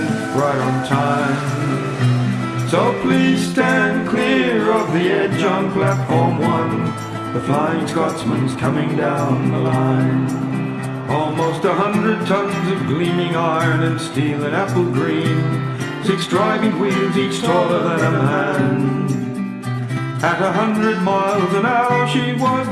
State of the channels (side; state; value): both; identical; correlation 1.00